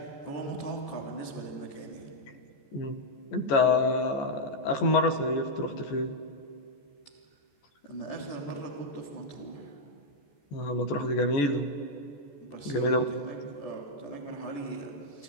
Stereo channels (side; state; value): right; late; 14 ms